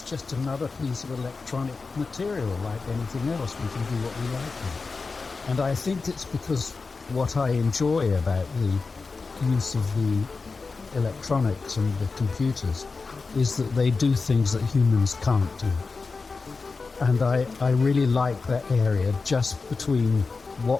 just another piece of electronic material like anything else. We can do what we like with it. And I think it's because what I enjoy about the use of the electronics and the computers is that they do things that humans can't do. And I really like that area just between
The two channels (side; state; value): right; quieter; 4.3 dB